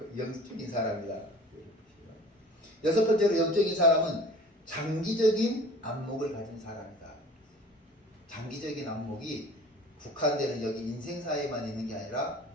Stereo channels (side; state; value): both; normal; correlation 0.45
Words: 영적인 사람이다. 여섯 번째로, 영적인 사람은 장기적인 안목을 가진 사람이다. 장기적인 안목이 국한되는 여기 인생사에만 있는 게 아니라,